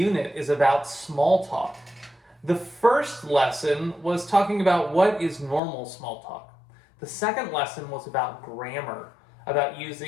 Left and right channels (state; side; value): drops out; right; at 5.6 s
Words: is about small talk. The first lesson was talking about what is normal small talk. The second lesson was about grammar, about